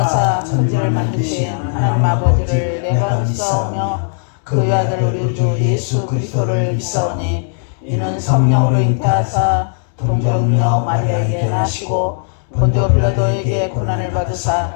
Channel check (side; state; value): right; silent; 69 dB below the other